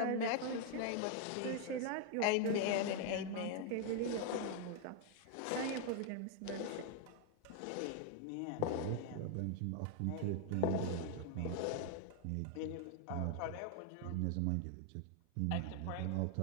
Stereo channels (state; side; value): different; both; correlation 0.00